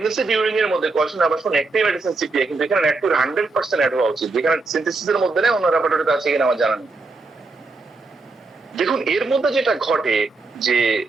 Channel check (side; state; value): left; quieter; 3.6 dB